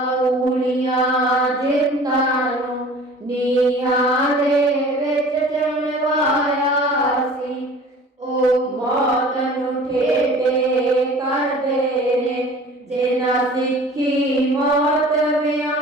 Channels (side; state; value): both; normal; correlation 0.45